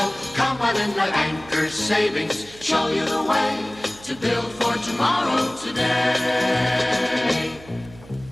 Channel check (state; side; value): noise; right; hum, 21 dB below the sound